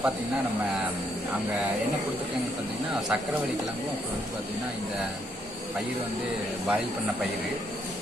பார்த்தீங்கன்னா நம்ம அங்கே என்ன கொடுத்துருக்காங்க பார்த்தீங்கன்னா சக்கரவள்ளி கிழங்கும் அப்புறம் வந்து பார்த்திங்கன்னா இந்த பயிர் வந்து பாயில் பண்ண பயிர்.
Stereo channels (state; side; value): normal; both; correlation 0.73